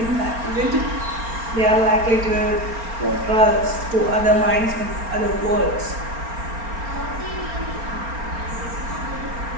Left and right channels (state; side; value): late; left; 4.3 ms